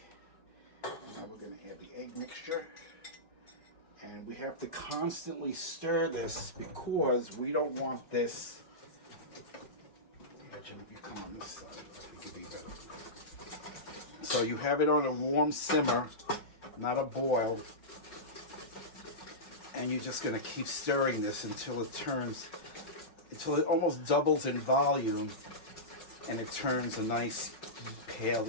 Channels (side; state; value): right; late; 5.4 ms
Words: and now we're going to add the egg mixture. And we have to constantly stir this because we don't want this. Imagine if you come on this side, it could be better. So you have it on a warm simmer, not a boil. And you're just going to keep stirring this until it almost doubles in volume and it turns a nice pale